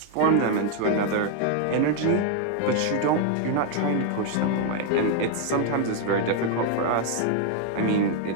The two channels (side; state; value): both; different; correlation 0.00